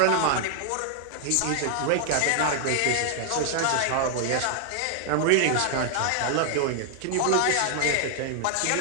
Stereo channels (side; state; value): both; different; correlation 0.00